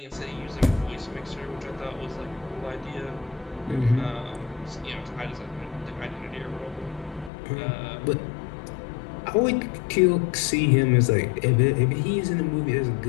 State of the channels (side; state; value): right; drops out; at 7.3 s